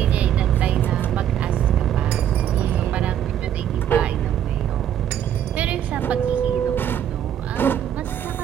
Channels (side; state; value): left; quieter; 10.1 dB